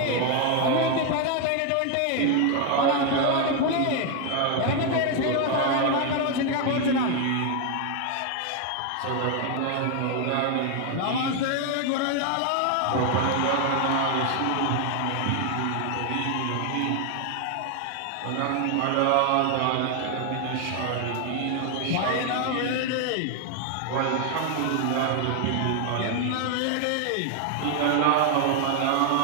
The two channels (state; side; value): different; both; correlation 0.01